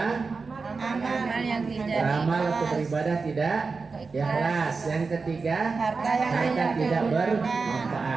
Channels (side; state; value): left; quieter; 4.4 dB